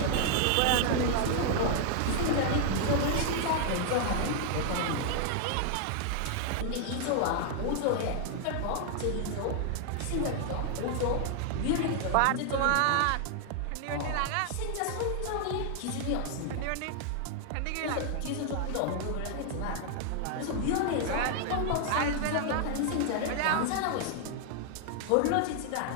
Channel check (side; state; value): both; different; correlation 0.00